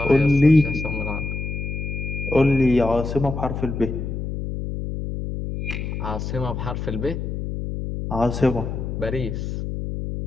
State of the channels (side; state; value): left; noise; hum, 4 dB below the sound